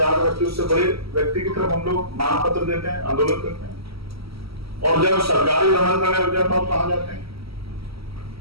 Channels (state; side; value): late; left; 0.75 ms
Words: का व्यक्ति, उससे बड़े व्यक्ति की तरफ हम लोग मांग पत्र देते हैं, आंदोलन करते हैं। और जब सरकारी दमन करने लग जाता तो कहां जाते हैं?